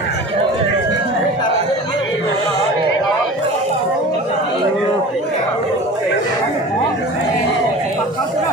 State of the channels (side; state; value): both; normal; correlation 0.38